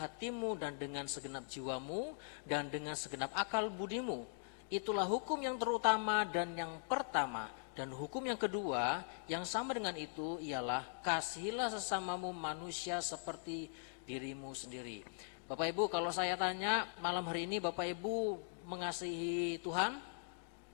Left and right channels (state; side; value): silent; right; digital silence